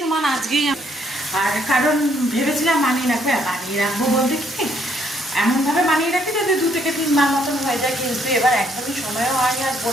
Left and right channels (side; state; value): both; normal; correlation 0.69